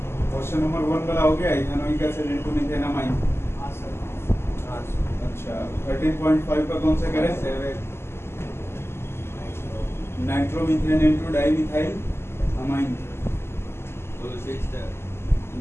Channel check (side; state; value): right; late; 0.12 ms